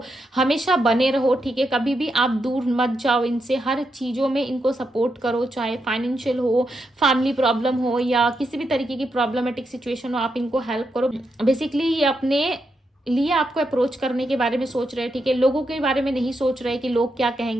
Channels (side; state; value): both; normal; correlation 0.83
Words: हमेशा बने रहो, ठीक है। कभी भी आप दूर मत जाओ इनसे, हर चीज़ों में इनको सपोर्ट करो, चाहे फाइनेंशियल हो, फैमिली प्रॉब्लम हो, या किसी भी तरीके की प्रॉब्लमेटिक सिचुएशन हो, आप इनको हेल्प करो। बेसिकली ये अपने लिए आपको अप्रोच करने के बारे में सोच रहे हैं, ठीक है। लोगों के बारे में नहीं सोच रहे कि लोग क्या